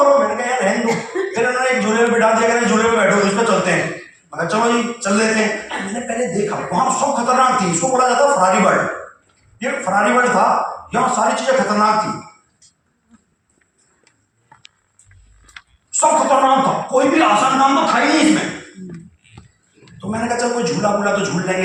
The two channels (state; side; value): identical; both; correlation 1.00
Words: मैंने कहा यार रहने दो। फिर उन्होंने एक झूले में बिठा दिया, झूले में बैठो, इस पर चलते हैं। मैं चलो जी चल लेते हैं। मैंने पहले देखा वहां सब खतरनाक थी, इसको बोला जाता है फरारी बर्ड, ये फरारी बर्ड था, यहाँ सारी चीजें खतरनाक थी, सब खतरनाक था, कोई भी आसान काम तो था ही नहीं इसमें। तो मैंने कहा चल कोई झूला वूला तो झूल